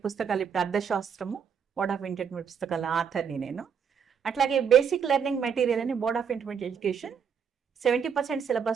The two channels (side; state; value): left; quieter; 7.1 dB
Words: పుస్తకాలు ఇప్పుడు అర్థశాస్త్రము బోర్డ్ ఆఫ్ ఇంటర్మీడియట్ పుస్తకాల ఆథర్ని నేను. అట్లాగే బేసిక్ లెర్నింగ్ మెటీరియల్ అని బోర్డ్ ఆఫ్ ఇంటర్మీడియట్ ఎడ్యుకేషన్ 70%